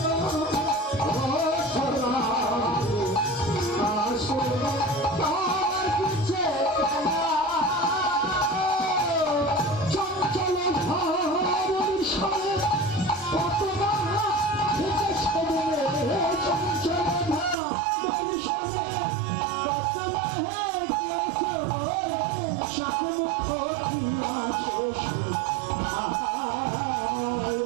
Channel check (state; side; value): drops out; left; at 17.6 s